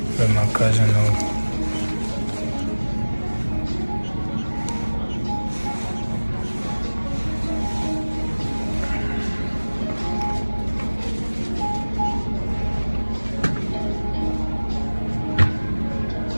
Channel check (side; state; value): both; inverted; correlation -1.00